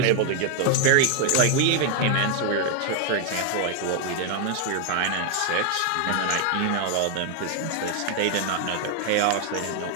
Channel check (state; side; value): different; both; correlation 0.00